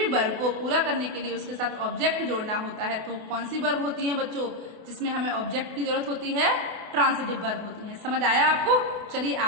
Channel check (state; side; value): late; left; 28 ms